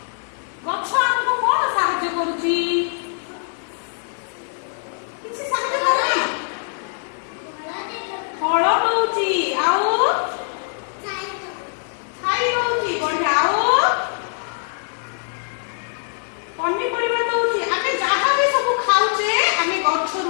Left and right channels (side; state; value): right; silent; 59 dB below the other